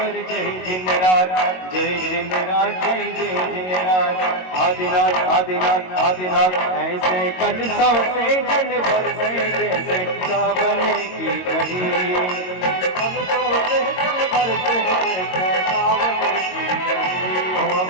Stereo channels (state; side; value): late; right; 22 ms